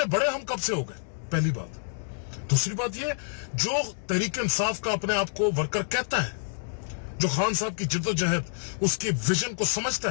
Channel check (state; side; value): silent; right; digital silence